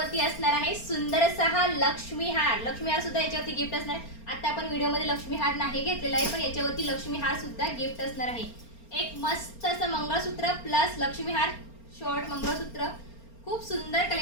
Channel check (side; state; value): right; late; 4.3 ms